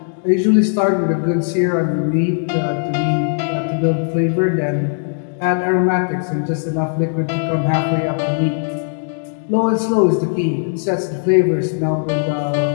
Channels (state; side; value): silent; right; digital silence